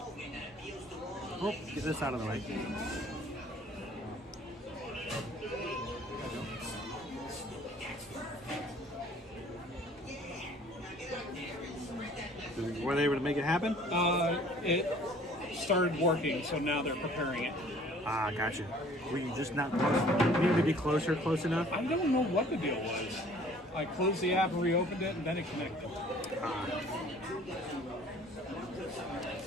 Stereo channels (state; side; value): normal; both; correlation 0.53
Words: Oh, get this out of the way. Were they able to make it happen? It started working, so now they're preparing it. Ah, gotcha. Were you just not close? You needed to be close enough? I don't know what the deal was. I closed the app and reopened it, and then it connected.